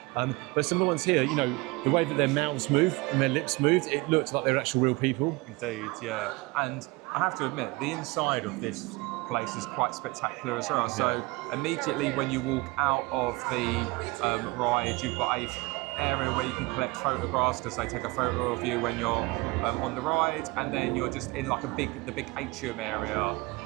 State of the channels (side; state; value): left; quieter; 23.8 dB